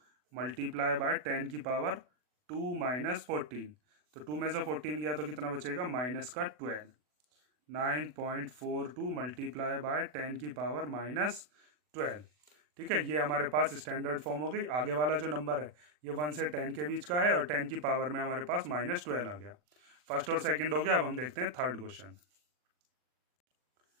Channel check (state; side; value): late; left; 40 ms